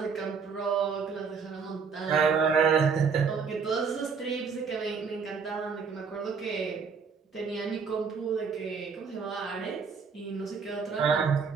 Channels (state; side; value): quieter; left; 5.7 dB